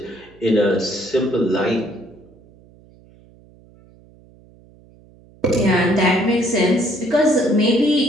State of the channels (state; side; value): noise; right; hum, 27 dB below the sound